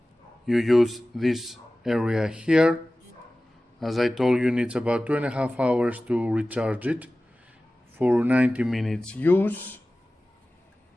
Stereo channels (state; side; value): normal; both; correlation 0.97